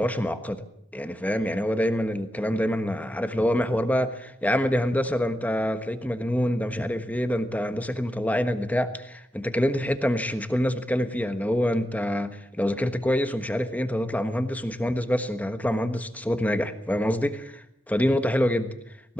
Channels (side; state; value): both; normal; correlation 0.88